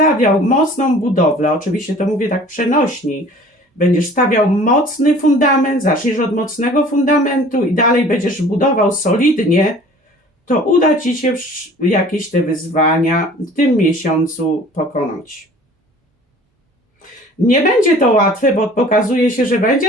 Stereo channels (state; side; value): normal; both; correlation 0.48